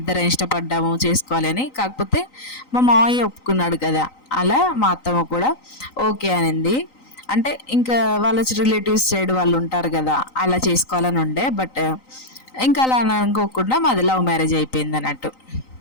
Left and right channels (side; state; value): right; late; 3.9 ms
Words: ఇష్టపడ్డాము చేసుకోవాలి అని. కాకపోతే మా మావయ్య ఒప్పుకున్నాడు కదా, అలా మా అత్తమ్మ కూడా ఓకే అనింది. అంటే ఇంకా వాళ్ళ రిలేటివ్స్ సైడ్ వాళ్ళు ఉంటారు కదా, అలా చేసుకోవాలని ఉండే. బట్ ఇంకా అలా అనుకోకుండా మాది లవ్ మ్యారేజ్ అయిపోయింది అన్నట్టు.